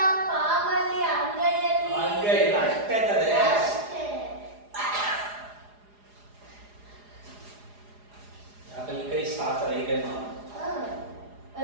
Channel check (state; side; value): late; left; 4.8 ms